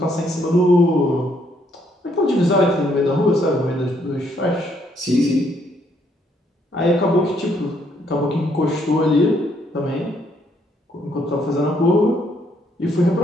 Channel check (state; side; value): normal; both; correlation 0.70